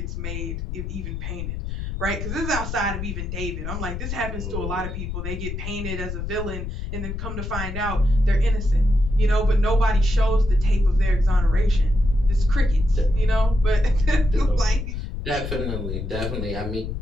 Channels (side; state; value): left; noise; rumble, 5 dB below the sound